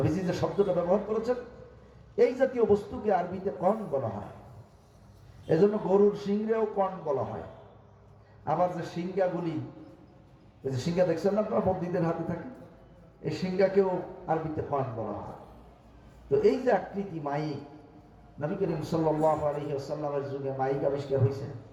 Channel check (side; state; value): both; identical; correlation 1.00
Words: যে শব্দটা ব্যবহার করেছেন, এই জাতীয় বস্তুকে আরবিতে কর্ন বলা হয়। এজন্য গরুর সিংহেও কর্ন বলা হয়। আবার যে সিংহাগুলি, এই যে সিংহা দেখছেন না আপনারা, বন্দীদের হাতে থাকে, এই সিংহাকেও আরবিতে কর্ন বলা হয়। তো এই যে আকৃতি মাইক, নবী করিম সাল্লাল্লাহু আলাইহি ওয়াসাল্লামের যুগে মাইক আবিষ্কার হয়েছে?